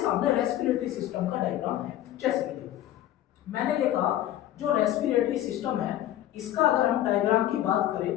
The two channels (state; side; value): quieter; right; 12.9 dB